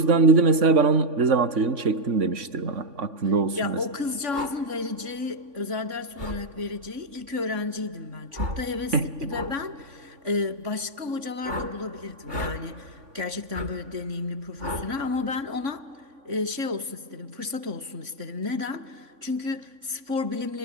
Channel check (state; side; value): late; left; 3.5 ms